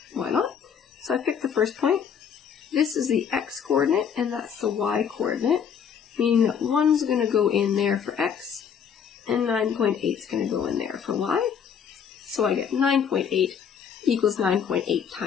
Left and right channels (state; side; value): quieter; right; 7.5 dB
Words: why not? So I picked the first point. This is the x coordinate, and that's the y coordinate, meaning that 1's going to go in there for x, and 9.8 is going to go in there for y. So I get 9.8 equals 9.8